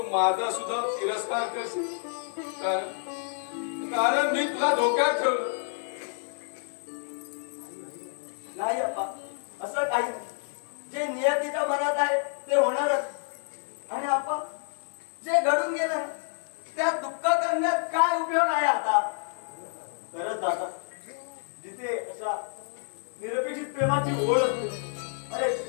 माझा सुद्धा तिरस्कार करशील, कारण मी तुला धोक्यात ठेवलं. नाही अप्पा, असं काही नाही. जे नियतीच्या मनात आहे ते होणारच. आणि अप्पा, जे घडून गेलं त्यात दुःख करण्यात काय उपयोग आहे आता? खरंच दादा, जिथे निरपेक्षित प्रेमाची ओढ असते, अरे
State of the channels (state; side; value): silent; right; digital silence